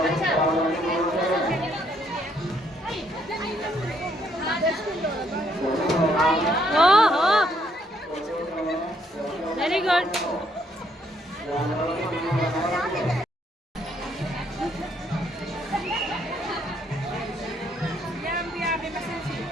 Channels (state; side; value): normal; both; correlation 0.70